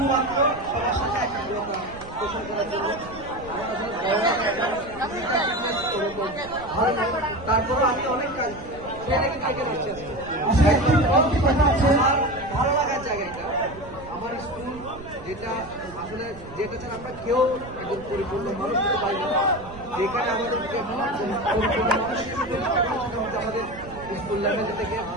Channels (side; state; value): right; noise; rumble, 17 dB below the sound